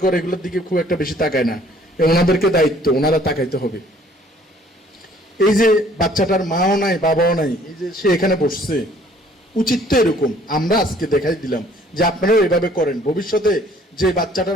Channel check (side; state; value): both; normal; correlation 0.58